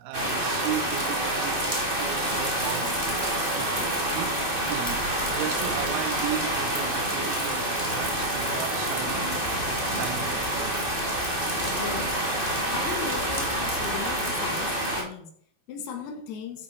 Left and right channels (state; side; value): late; left; 2.6 ms